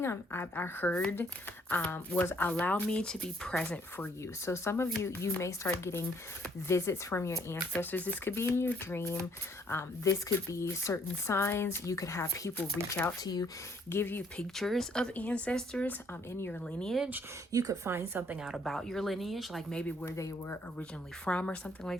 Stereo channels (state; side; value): normal; both; correlation 0.65